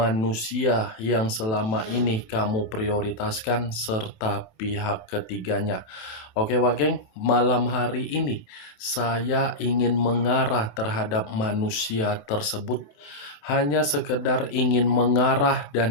yang selama ini kamu prioritaskan, serta pihak ketiganya. Oke Wak Geng, malam hari ini saya ingin mengarah terhadap manusia tersebut, hanya sekedar ingin mengarah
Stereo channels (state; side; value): late; right; 27 ms